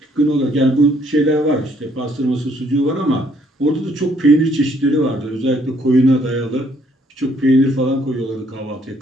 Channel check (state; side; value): normal; both; correlation 0.66